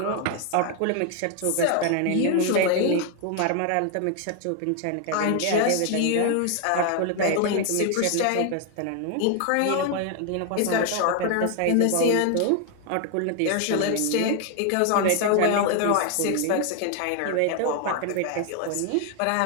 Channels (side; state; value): both; different; correlation 0.01